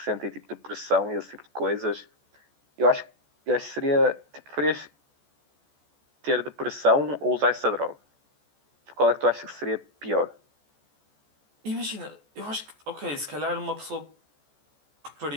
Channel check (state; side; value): late; left; 14 ms